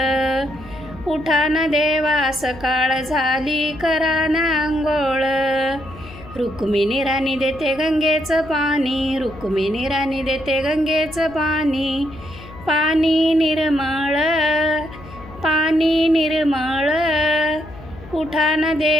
उठा ना देवा सकाळ झाली, करा ना अंघोळ. रुक्मिणी राणी देते गंगेचं पाणी, रुक्मिणी राणी देते गंगेचं पाणी. पाणी निर्मळ, पाणी निर्मळ. उठा ना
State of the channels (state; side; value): noise; left; hum, 17 dB below the sound